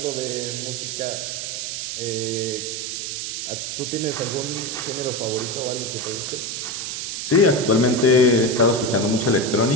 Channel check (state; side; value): noise; right; hiss, 4 dB below the sound